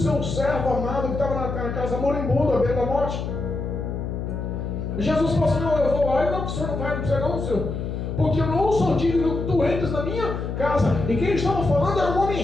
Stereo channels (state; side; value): noise; left; hum, 4 dB below the sound